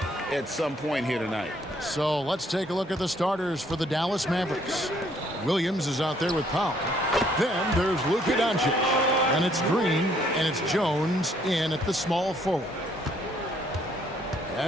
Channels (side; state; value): both; normal; correlation 0.66